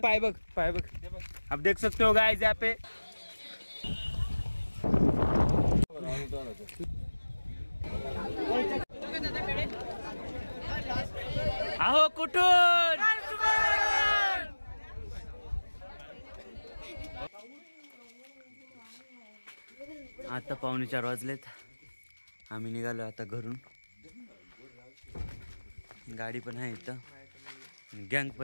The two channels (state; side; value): inverted; both; correlation -1.00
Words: बग अब देख सकते हो गाइस यहाँ पे। आहो कुठून आता 4:45 वाजलेत। आम्ही निघालो आता घरून। गाडी पण आहे इथं, गँग